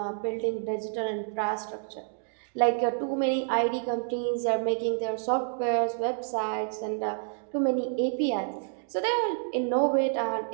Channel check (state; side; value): silent; left; digital silence